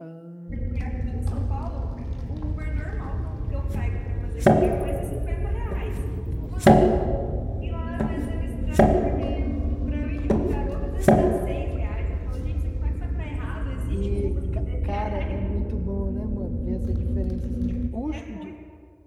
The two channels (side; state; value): both; identical; correlation 1.00